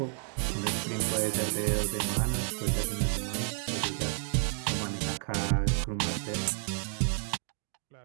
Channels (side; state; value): left; silent; 57 dB below the other